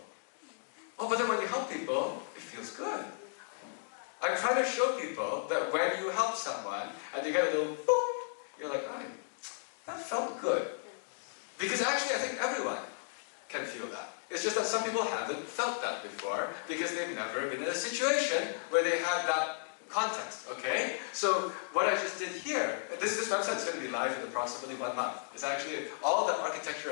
Oh, but then when you help people, it feels good. I'm trying to show people that when you help someone and you get a little boop, you're like, oh, that felt good. Because actually, I think everyone can feel that. It's just that some people haven't felt that before because they've never been in a situation where they had that context, okay? So what I just did here, this website is going to be live in approximately 1 month. It's actually, all the architecture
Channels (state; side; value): silent; right; digital silence